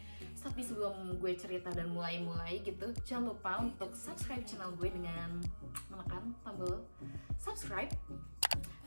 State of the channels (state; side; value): inverted; both; correlation -1.00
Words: tapi sebelum gue cerita dan mulai gitu, jangan lupa untuk subscribe channel gue dengan menekan tombol subscribe